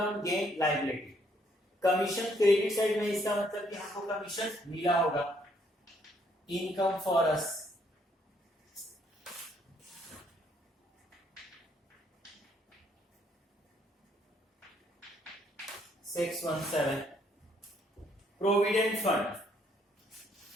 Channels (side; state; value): both; normal; correlation 0.68